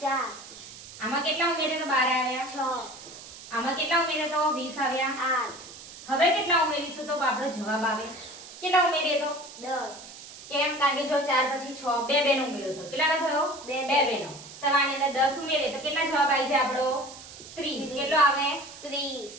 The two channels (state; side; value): noise; right; hiss, 16 dB below the sound